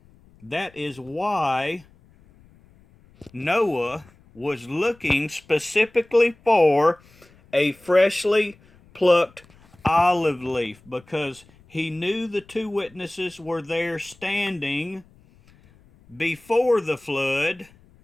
That is why Noah was looking specifically for a freshly plucked olive leaf, because he knew the two witnesses were there standing before the flood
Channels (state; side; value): noise; left; rumble, 28 dB below the sound